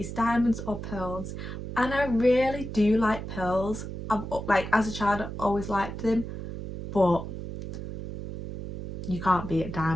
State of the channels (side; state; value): right; noise; hum, 8 dB below the sound